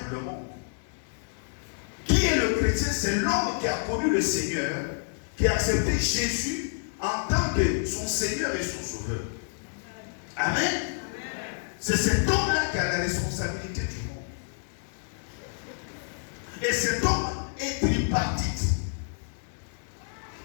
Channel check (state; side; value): silent; right; 58 dB below the other